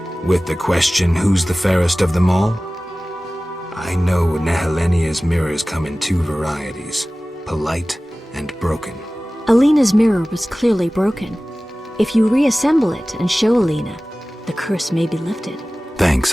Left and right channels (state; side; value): normal; both; correlation 0.97